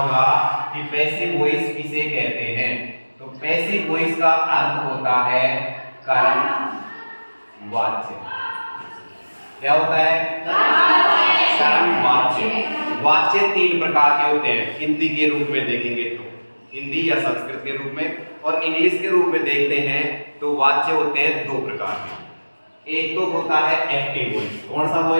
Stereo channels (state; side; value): inverted; both; correlation -1.00